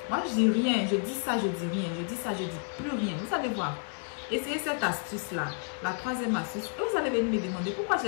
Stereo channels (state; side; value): quieter; right; 39.1 dB